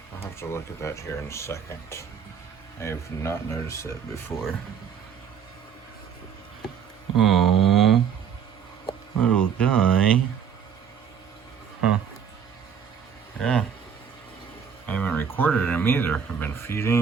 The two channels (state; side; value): quieter; left; 7.6 dB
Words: I'll have to look at that here in a second. I have not noticed that before. Oh, little guy. Huh. Yeah. I haven't recorded him either. I've been